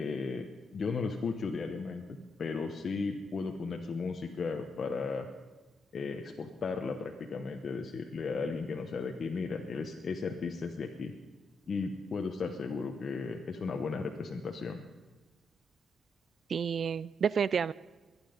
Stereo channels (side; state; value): both; normal; correlation 0.79